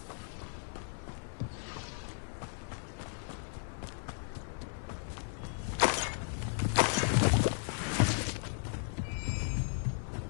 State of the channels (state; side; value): silent; right; 54 dB below the other